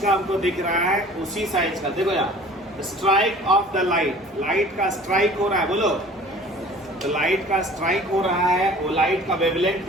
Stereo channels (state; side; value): normal; both; correlation 0.47